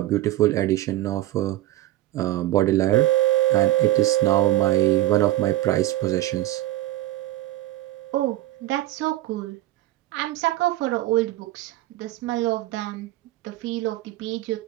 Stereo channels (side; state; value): left; quieter; 15.6 dB